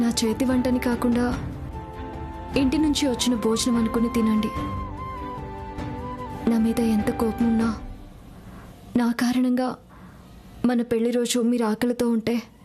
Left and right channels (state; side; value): identical; both; correlation 1.00